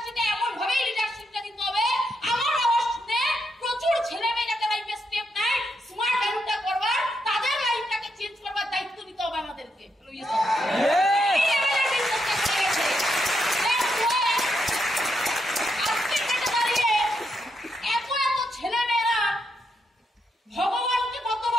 এমন ভাবে লিডারশিপটা দিতে হবে, আমার আওয়াজ শুনে প্রচুর ছেলে মেয়ে যাতে লাইফে স্টেপ নেয়, স্মার্ট এডুটা করবার, তাদের লাইফটাকে চেঞ্জ করবার দায়িত্ব নিতে হবে আমাদেরকে। ভগবানকে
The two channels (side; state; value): both; normal; correlation 0.81